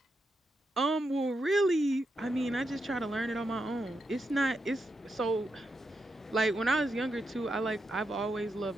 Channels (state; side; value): normal; both; correlation 0.84